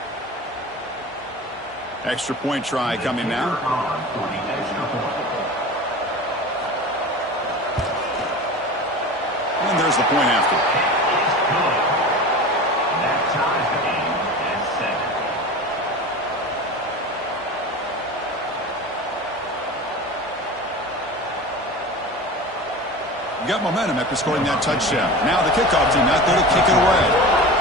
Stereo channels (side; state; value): both; normal; correlation 0.32